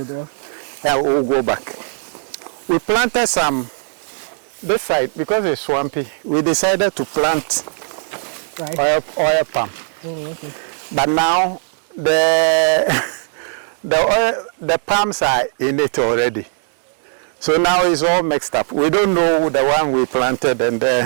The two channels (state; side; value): silent; left; digital silence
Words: or? Yeah, we'll go back. We planted some this side because it's swampy. We decided to plant oil palm. Oh, okay. But now the palms are in it already. So now it's all mixed up. We don't know the one we planted and